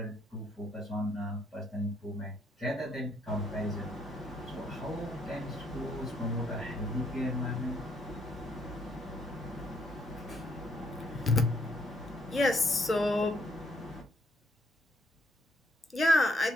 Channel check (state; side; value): normal; both; correlation 0.70